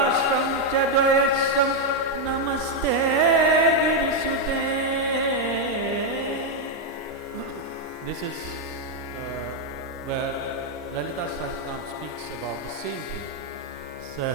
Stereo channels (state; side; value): normal; both; correlation 0.01